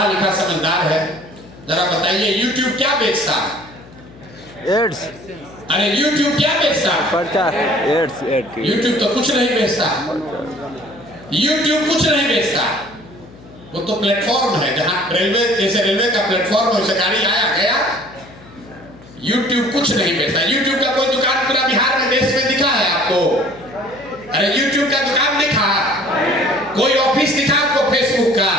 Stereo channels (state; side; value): noise; left; hum, 21 dB below the sound